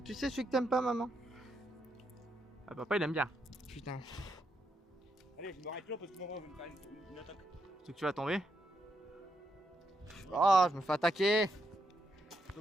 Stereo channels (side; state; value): both; normal; correlation 0.80